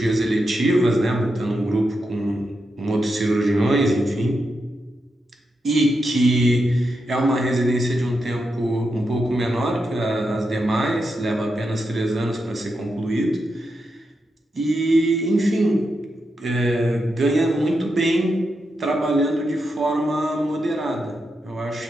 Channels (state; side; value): normal; both; correlation 0.86